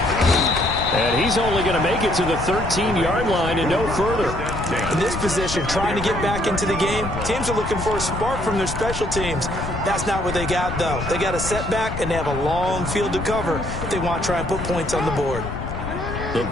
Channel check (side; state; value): left; noise; rumble, 6 dB below the sound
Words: And he's only going to make it to the 13-yard line and no further. In this position, trying to get back into the game, teams are looking for a spark from their special teams. That's not what they got, though. They got a setback, and they have a long field to cover if they want to try and put points on the board. The